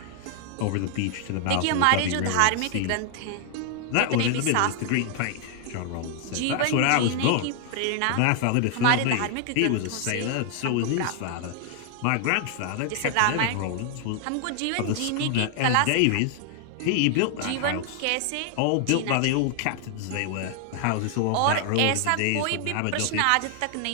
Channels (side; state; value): both; different; correlation 0.00